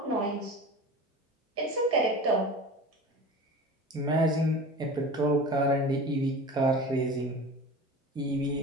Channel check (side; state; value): both; normal; correlation 0.35